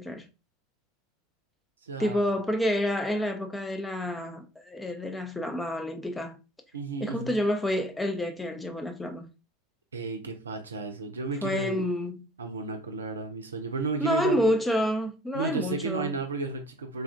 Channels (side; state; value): both; normal; correlation 0.58